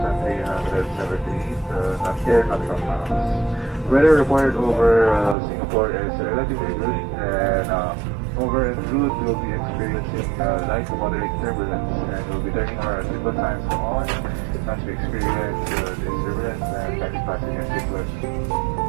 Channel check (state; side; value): drops out; left; at 5.4 s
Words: air miles. Weather reported over Singapore is relatively good, and over en route we'll be experiencing light to moderate turbulence, and we'll be turning our seatbelt signs on as we experience this turbulence and taxi passenger seatbelt